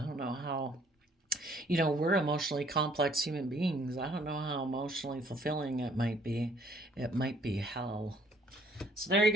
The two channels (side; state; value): both; normal; correlation 0.61